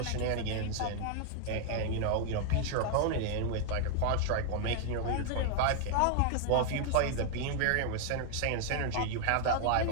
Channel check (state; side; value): different; both; correlation 0.00